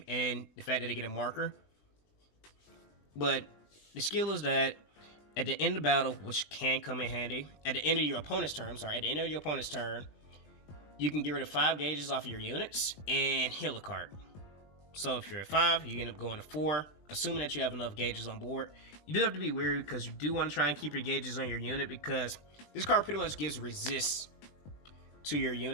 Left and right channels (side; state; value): right; late; 20 ms